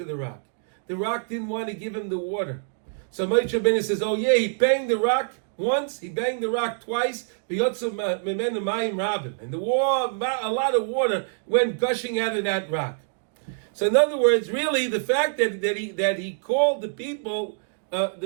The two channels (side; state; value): left; silent; digital silence